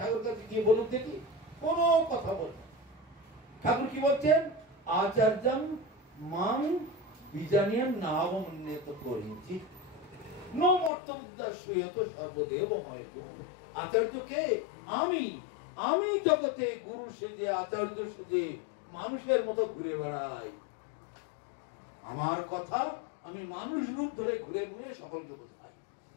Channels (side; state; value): right; drops out; at 10.9 s